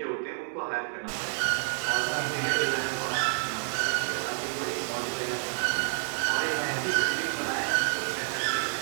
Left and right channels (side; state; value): left; silent; 58 dB below the other